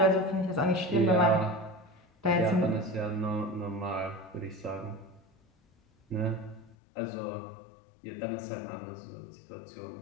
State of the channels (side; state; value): right; drops out; at 6.8 s